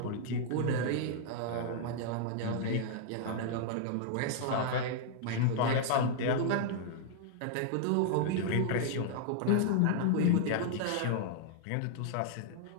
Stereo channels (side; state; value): both; different; correlation -0.01